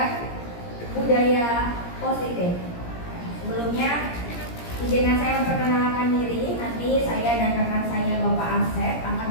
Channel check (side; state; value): right; late; 17 ms